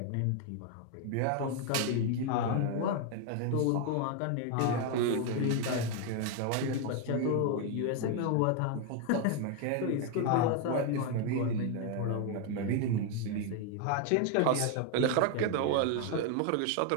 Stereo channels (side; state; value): both; different; correlation 0.01